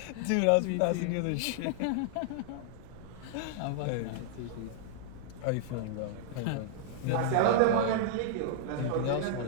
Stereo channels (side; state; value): both; different; correlation -0.01